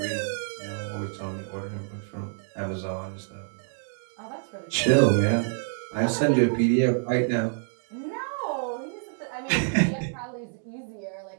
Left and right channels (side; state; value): left; silent; 60 dB below the other